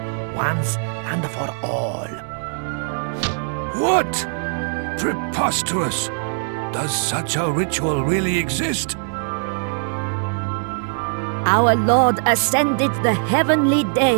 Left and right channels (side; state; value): left; silent; digital silence